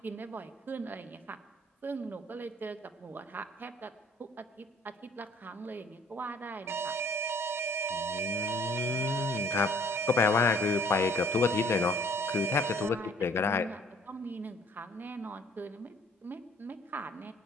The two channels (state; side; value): normal; both; correlation 0.58